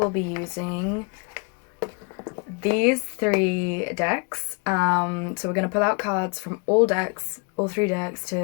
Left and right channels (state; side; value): quieter; right; 35.0 dB